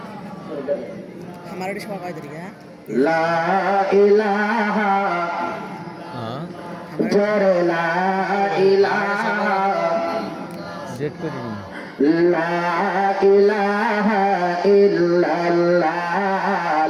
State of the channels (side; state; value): both; identical; correlation 1.00